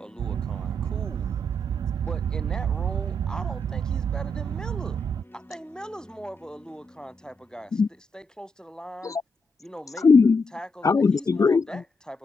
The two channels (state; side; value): normal; both; correlation 0.80